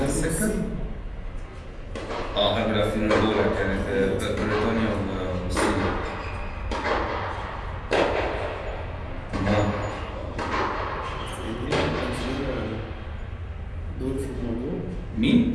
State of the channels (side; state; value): both; identical; correlation 1.00